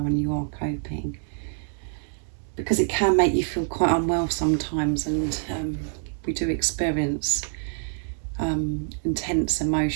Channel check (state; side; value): silent; left; 61 dB below the other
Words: you are coping, because it can make you feel quite unwell sometimes, and we do experience intense